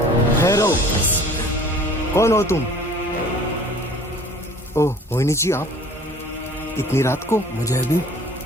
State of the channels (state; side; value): normal; both; correlation 0.49